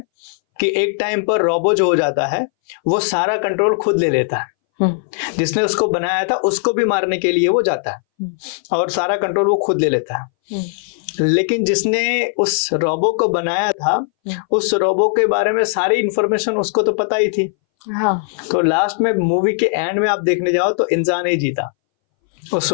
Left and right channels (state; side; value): silent; right; 63 dB below the other